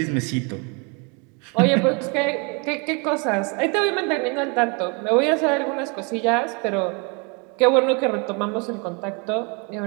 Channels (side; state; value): left; quieter; 32.5 dB